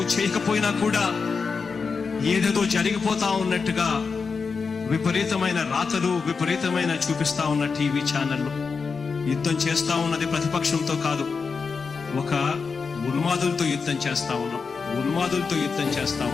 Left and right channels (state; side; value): quieter; right; 5.1 dB